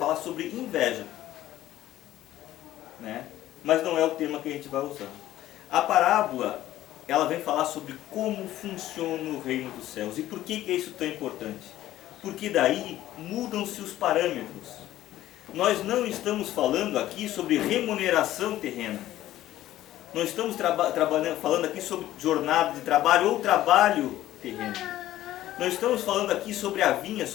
sobre inveja, né? Mas não é o tema que a gente vai usar. A parábola, ela vem falar sobre como funciona o reino dos céus. E por que é isso tão importante? Porque daí mudam-se os parâmetros. Nós não estamos falando aqui sobre remuneração terrena. Não estamos falando aqui sobre jornada de trabalho ou trabalho terreno. Nós estamos falando aqui sobre a vinha,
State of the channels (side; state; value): right; quieter; 14.1 dB